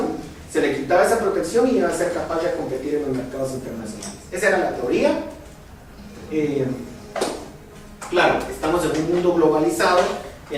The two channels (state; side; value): identical; both; correlation 1.00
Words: se le quitaba esa protección y iba a ser capaz de competir en los mercados internacionales. Esa era la teoría. Claro, estamos en un mundo globalizado